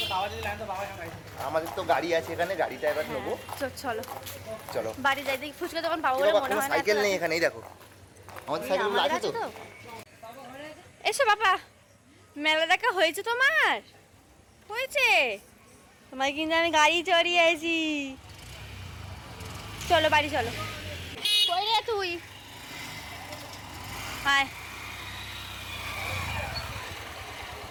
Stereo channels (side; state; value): both; identical; correlation 1.00